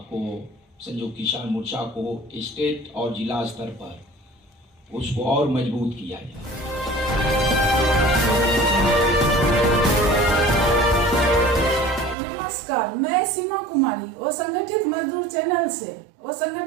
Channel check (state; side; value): drops out; left; at 12.2 s